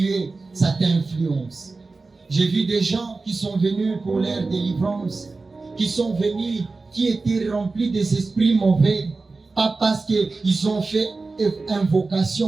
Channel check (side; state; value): left; quieter; 3.8 dB